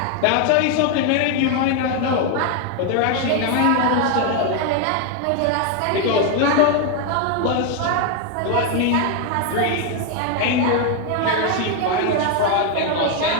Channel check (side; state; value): both; different; correlation 0.01